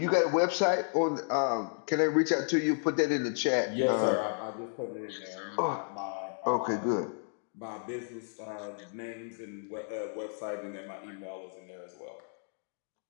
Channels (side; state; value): right; silent; digital silence